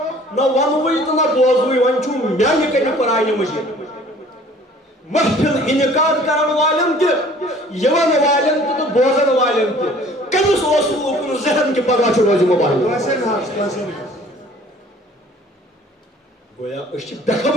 نہ ونوٕے تہٕ نہ بوزوٕے وۄنۍ چھُ میانہِ کنہِ قرآنہِ مجیٖد محفل انعقاد کرن والٮ۪ن تہِ یِوان والٮ۪ن تہِ تہٕ بوزن والٮ۪ن تہِ کٔمِس اوس نہٕ اوکُن ذہن کہِ پگاہ چھُ روزِ موبایل گویا أسۍ چھِ بے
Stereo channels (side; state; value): both; normal; correlation 0.52